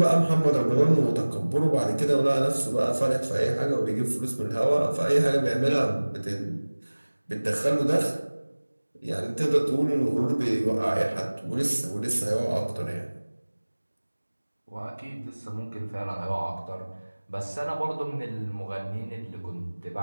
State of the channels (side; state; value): both; inverted; correlation -1.00